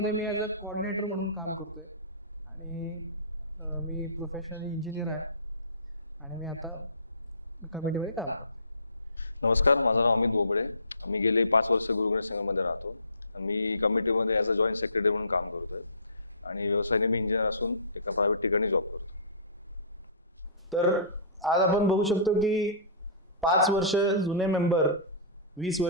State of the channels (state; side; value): inverted; both; correlation -0.40